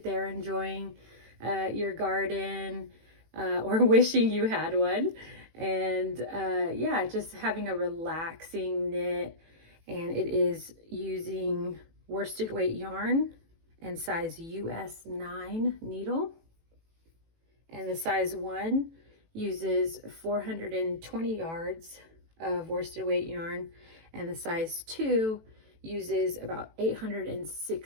there enjoying your garden or wishing you had one. And yeah, just having a relaxing knit. And it is using worsted weight yarn and size US 9 needle, and the size 1 uses 420 yards of worsted weight yarn, and the size 2 uses about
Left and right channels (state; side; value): late; left; 18 ms